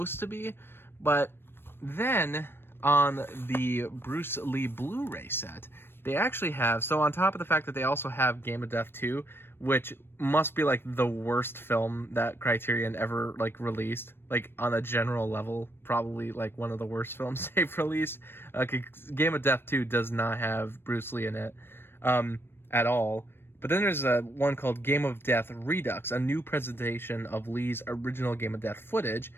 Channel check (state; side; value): late; right; 0.11 ms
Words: to be. But then on the Bruce Lee Blu-ray set, they actually have, so on top of the fact that they also have Game of Death 2, which must be like the worst film that Criterion ever like released, like on a general level, probably like one of the worst films they've released. Game of Death 2 does not have Bruce Lee in it at all. But then there's one called Game of Death Redux, a new presentation of Lee's original Game of Death footage.